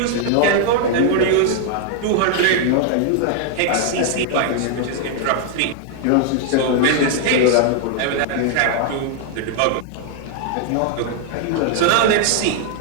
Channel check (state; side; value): different; both; correlation 0.00